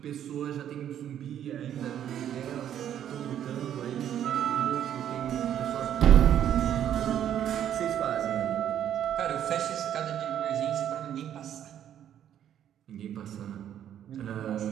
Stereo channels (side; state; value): left; quieter; 10.3 dB